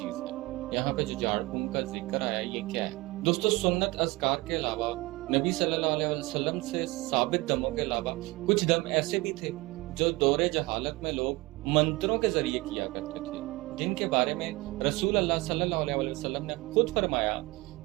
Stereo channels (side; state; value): left; quieter; 22.2 dB